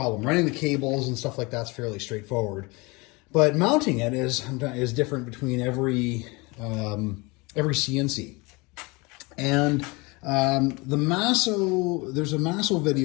Running the cables and stuff like that's fairly straightforward, but mounting it is different between every CNC. And there's a Masso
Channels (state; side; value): quieter; right; 26.0 dB